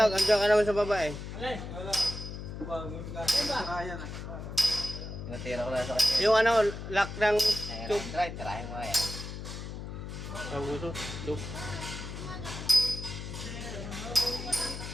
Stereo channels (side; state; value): left; noise; hum, 8 dB below the sound